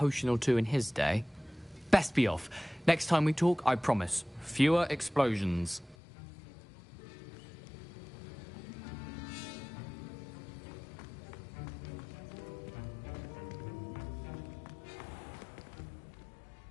or two in his day. Best be off. Next time we talk, I promise, fewer explosions.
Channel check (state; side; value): drops out; right; at 6.0 s